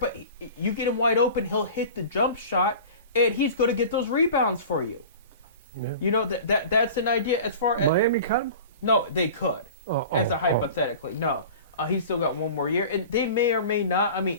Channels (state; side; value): inverted; both; correlation -0.39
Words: you get him wide open, he'll hit the jump shot, and he's going to get those rebounds for you. Yeah. That's an idea as far as... Miami cut him? No, they could. Hypothetically. No. He's still got one more year, and they may or may not. I